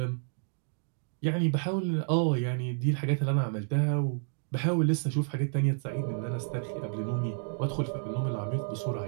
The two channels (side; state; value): left; silent; digital silence